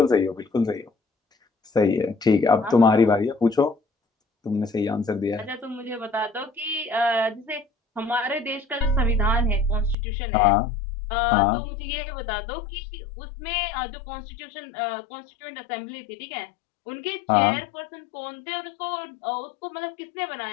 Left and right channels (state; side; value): drops out; right; at 10.0 s